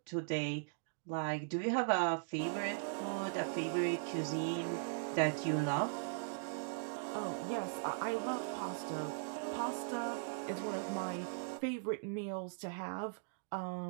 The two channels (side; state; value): left; silent; digital silence